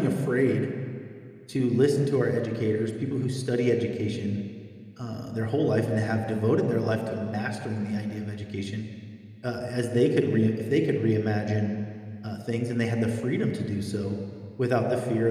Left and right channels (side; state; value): both; identical; correlation 1.00